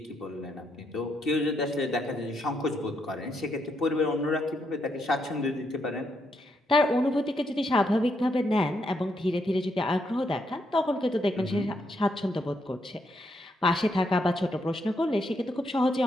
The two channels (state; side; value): normal; both; correlation 0.78